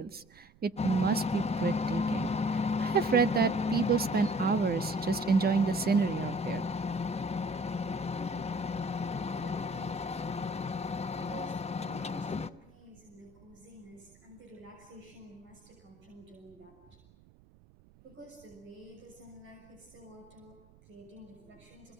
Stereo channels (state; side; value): noise; right; rumble, 27 dB below the sound